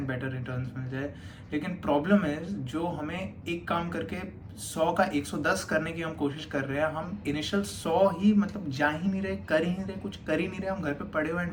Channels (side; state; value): both; identical; correlation 1.00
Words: बेटर रिटर्न्स मिल जाए। लेकिन प्रॉब्लम इज जो हमें एक काम करके 100 का 110 करने की हम कोशिश कर रहे हैं, हम इनिशियल 100 ही मतलब जा ही नहीं रहे, कर ही नहीं रहे, कुछ कर ही नहीं रहे, हम घर पे पड़े हुए and